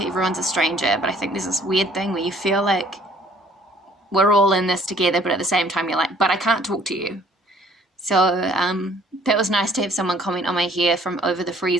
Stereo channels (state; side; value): normal; both; correlation 0.58